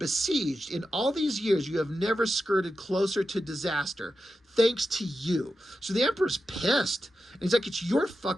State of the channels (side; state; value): both; normal; correlation 0.90